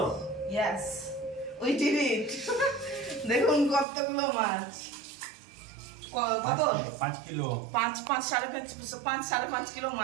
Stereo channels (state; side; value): drops out; left; at 3.9 s